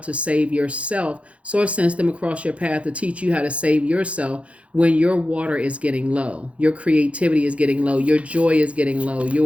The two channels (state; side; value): late; left; 0.063 ms